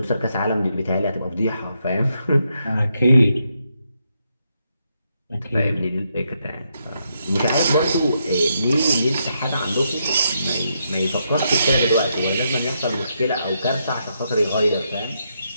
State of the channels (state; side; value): inverted; both; correlation -0.80